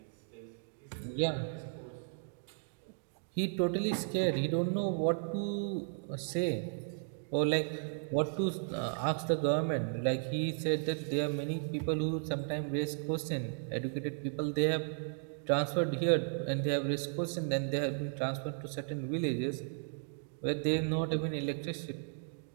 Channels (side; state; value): left; silent; digital silence